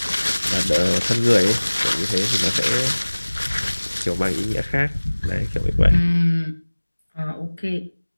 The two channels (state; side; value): inverted; both; correlation -1.00